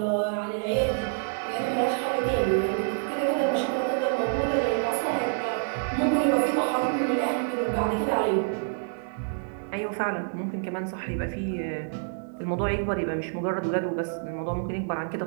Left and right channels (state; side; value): silent; left; digital silence